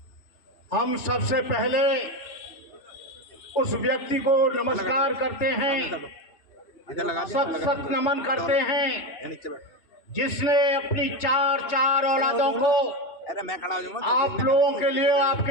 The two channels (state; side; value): late; right; 3.3 ms